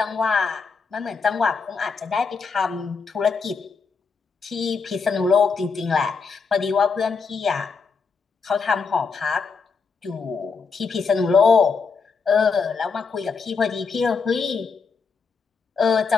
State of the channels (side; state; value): right; quieter; 5.2 dB